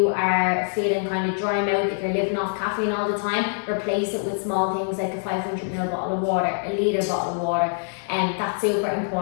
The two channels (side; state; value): right; silent; digital silence